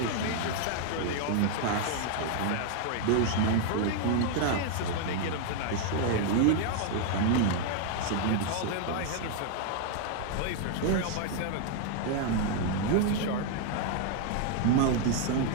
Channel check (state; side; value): different; both; correlation 0.00